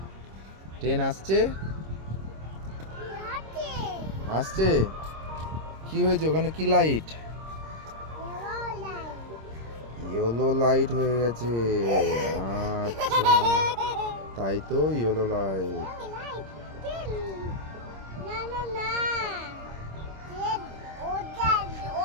ট্রেন আসছে আসছে। কি হয়েছে ওখানে? কি লাইট? ইয়েলো লাইট হয়ে গেছে। আচ্ছা তাই তো, ইয়েলো লাইট।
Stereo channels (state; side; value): late; left; 26 ms